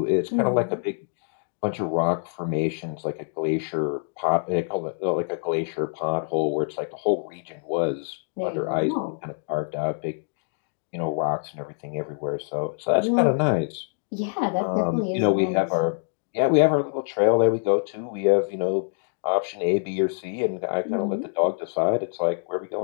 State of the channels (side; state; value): right; silent; digital silence